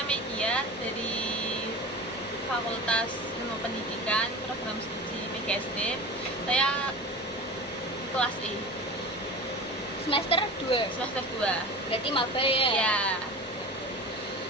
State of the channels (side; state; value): both; normal; correlation 0.33